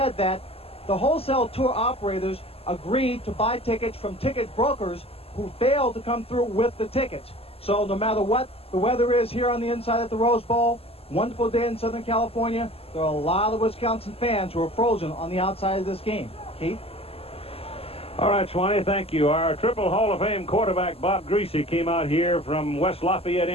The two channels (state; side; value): late; right; 0.28 ms